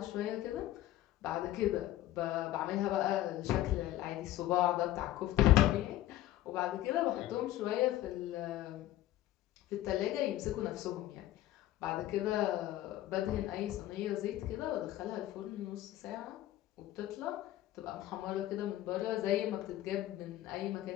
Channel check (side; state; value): right; quieter; 14.2 dB